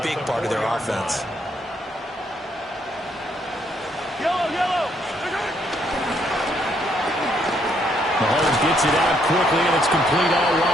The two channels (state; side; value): normal; both; correlation 0.72